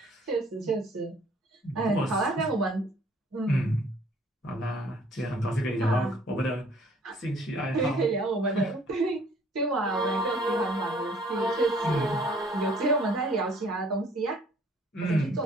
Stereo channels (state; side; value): normal; both; correlation 0.57